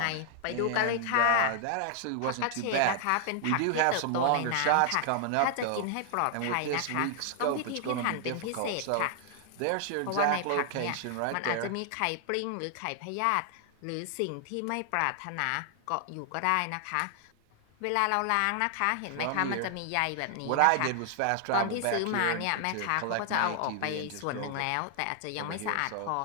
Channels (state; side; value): different; both; correlation 0.00